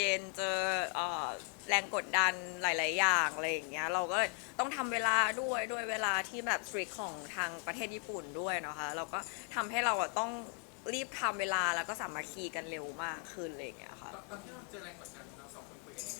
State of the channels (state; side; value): quieter; right; 36.7 dB